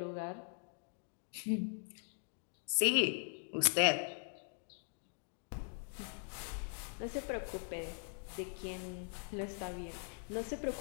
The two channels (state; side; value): silent; right; 51 dB below the other